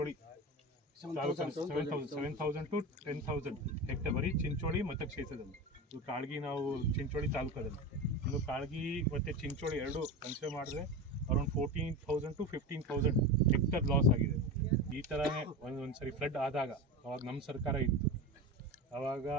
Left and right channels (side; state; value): both; normal; correlation 0.24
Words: 7,000 to 10,000 ಹೆಕ್ಟರ್ ಬರೀ ಚಿಂಚೋಳಿ ಮತಕ್ಷೇತ್ರದಲ್ಲಿ. ಇದು ಕಾಳಗಿ ನಾವು ಚಿಂಚೋಳಿ ತಾಲೂಕದಲ್ಲಿ. ಇನ್ನು ಕಾಳಗಿ ಮತ್ತು ಚಿಂಚೋಳಿ ಎರಡು ಕನ್ಸಿಡರ್ ಮಾಡಿದ್ರೆ ಅರೌಂಡ್ 14,000 to 15,000 ಹೆಕ್ಟರ್ ಲಾಸ್ ಆಗಿದೆ. ಈ ಥರನೇ ಒಂದು ಸರಿ ಫ್ಲಡ್ ಆದಾಗ, ಅವಾಗ ನಮ್ಮ ಸರ್ಕಾರ ಇತ್ತು, ಆವಾಗ